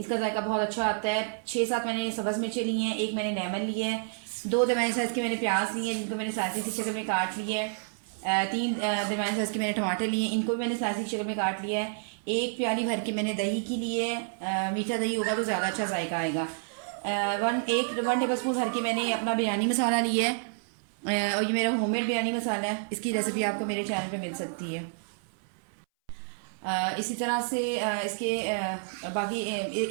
जायका बहुत अच्छा आता है। 6-7 मैंने सब्ज़ मिर्चें ली हैं, एक मैंने लेमन लिया है, 2 दरमियाने साइज़ के मैंने प्याज लिए हैं जिनको मैंने स्लाइसिस की शक्ल में काट लिया है। 3 दरमियाने साइज़ के मैंने टमाटर लिए हैं, इनको भी मैंने स्लाइसिस की शक्ल में काट लिया है। एक प्याली भर के मैंने दही की लिए है। मीठा दही होगा तो ज़्यादा अच्छा जायका आएगा। 1 टेबल स्पून भर के मैंने अपना बिरयानी मसाला लिया है। और ये मेरा होममेड बिरयानी मसाला है, इसकी रेसिपी आपको मेरे चैनल पे मिल सकती है। इसी तरह से इसके बाकी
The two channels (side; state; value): left; silent; 58 dB below the other